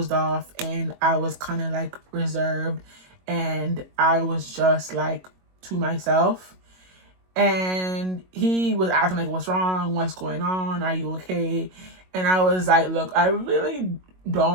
off. And I was kind of, like, reserved. And I was just, like, to myself. And he was asking like, what's wrong? What's going on? Are you okay? And I was like, look, I really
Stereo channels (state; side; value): late; left; 22 ms